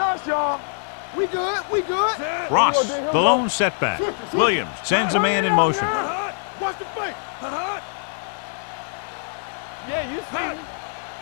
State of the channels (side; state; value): right; silent; digital silence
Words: us, y'all. We good. Ross, the lone setback. Williams sends a man in motion. Watch the fake. Yeah, you see me.